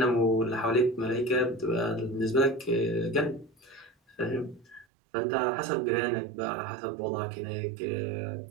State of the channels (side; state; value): left; drops out; at 4.9 s